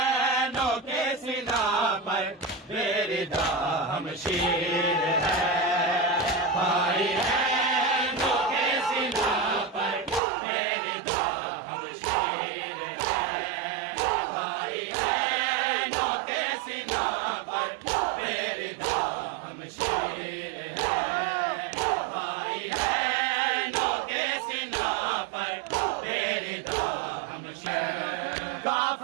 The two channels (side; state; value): left; drops out; at 10.2 s